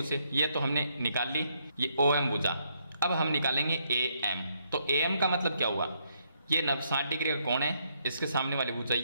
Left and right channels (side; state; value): both; inverted; correlation -0.74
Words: से, ये तो हमने निकाल ली, ये ओ एम भुजा। अब हम निकालेंगे ए एम, तो ए एम का मतलब क्या हुआ, ये 60 डिग्री का कोण है, इसके सामने वाली भुजा